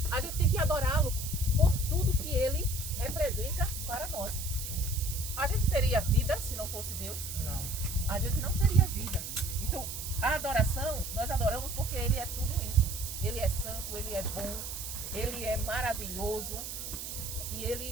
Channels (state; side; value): noise; right; hiss, 7 dB below the sound